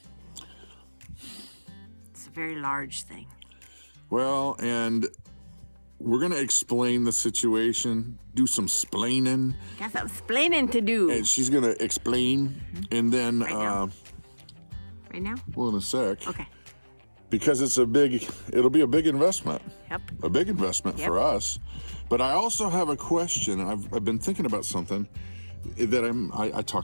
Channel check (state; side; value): inverted; both; correlation -1.00